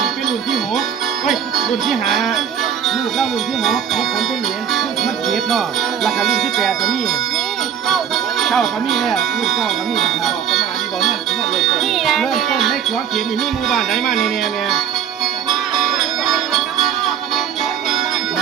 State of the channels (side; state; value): left; quieter; 8.5 dB